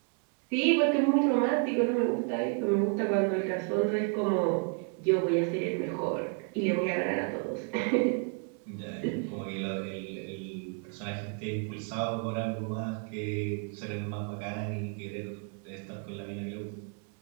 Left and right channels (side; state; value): left; quieter; 36.9 dB